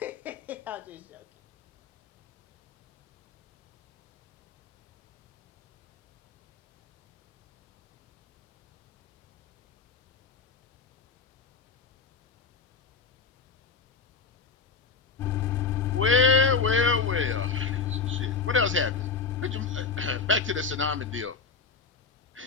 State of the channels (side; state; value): right; quieter; 5.1 dB